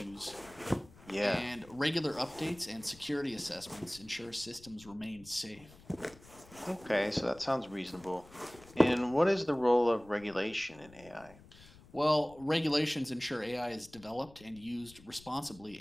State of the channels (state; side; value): noise; left; rumble, 22 dB below the sound